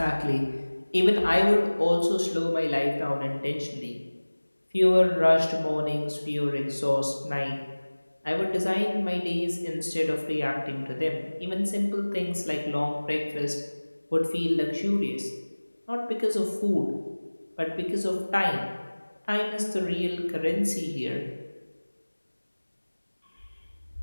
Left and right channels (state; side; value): inverted; both; correlation -1.00